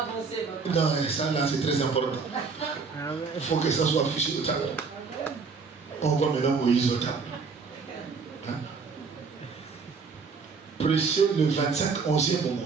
papa. Non, ça là c'est très important. Il faut que ça soit affiché au tableau. On voit maintenant Moïse au tableau. Hein? Prêcher le 25, 11e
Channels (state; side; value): quieter; left; 4.9 dB